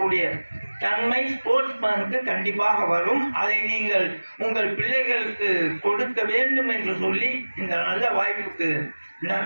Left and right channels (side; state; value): both; inverted; correlation -1.00